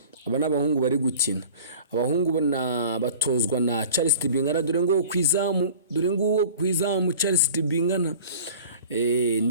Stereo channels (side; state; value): both; inverted; correlation -0.43